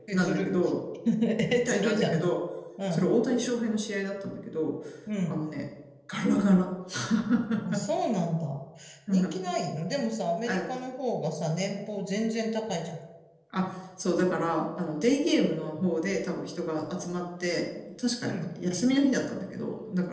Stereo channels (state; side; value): identical; both; correlation 1.00